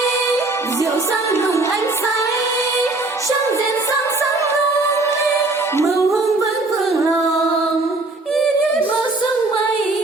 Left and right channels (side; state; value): left; quieter; 3.2 dB